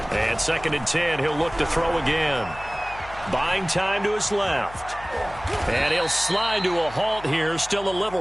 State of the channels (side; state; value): left; noise; hum, 17 dB below the sound